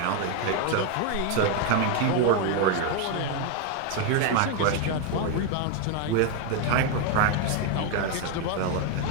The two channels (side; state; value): both; different; correlation 0.01